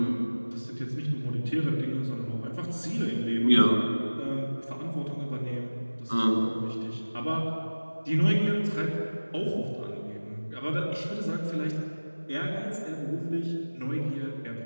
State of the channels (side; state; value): both; inverted; correlation -1.00